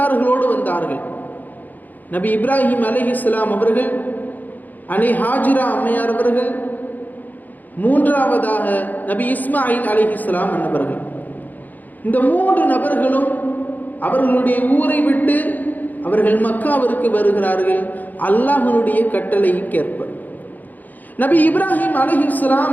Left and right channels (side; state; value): right; late; 0.083 ms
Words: வந்தார்கள். நபி இப்ராஹிம் அலைஹிஸ்ஸலாம் அவர்கள், அன்னை ஹாஜிரா அம்மையார் அவர்கள், மூன்றாவதாக நபி இஸ்மாயில் அலைஹிஸ்ஸலாம் அன்னவர்கள். இந்த மூன்று நபர்களும் அவர்களுடைய ஊரை விட்டு அவர்கள் மக்காவிற்கு வருகிறார்கள் அல்லாஹ்வினுடைய கட்டளைக்கேற்ப. நபி இப்ராஹிம்